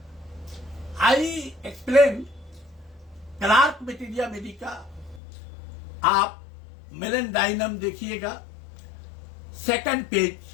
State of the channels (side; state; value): right; drops out; at 5.2 s